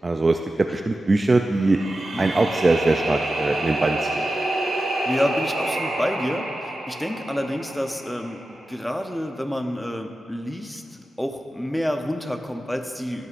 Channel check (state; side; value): normal; both; correlation 0.93